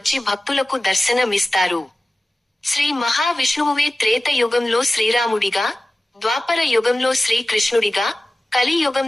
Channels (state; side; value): normal; both; correlation 0.96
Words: భక్తులకు దర్శనమిస్తారు. శ్రీ మహావిష్ణువువే త్రేత యుగంలో శ్రీరాముడిగా, ద్వాపర యుగంలో శ్రీకృష్ణుడిగా, కలి